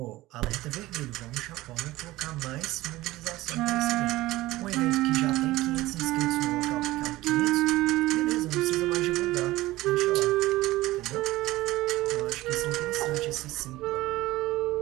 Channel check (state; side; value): quieter; left; 17.8 dB